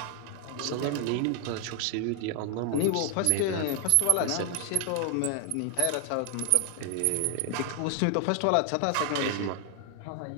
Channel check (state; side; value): different; both; correlation 0.00